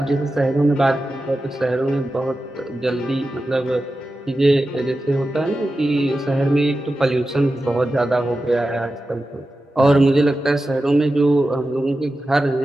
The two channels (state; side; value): normal; both; correlation 0.92